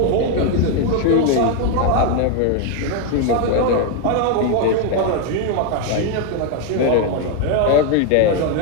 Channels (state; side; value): different; both; correlation 0.01